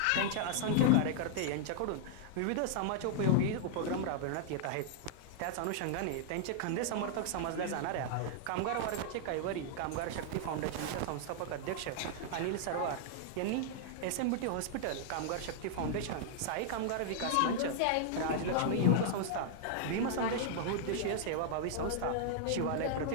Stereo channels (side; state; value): both; different; correlation -0.01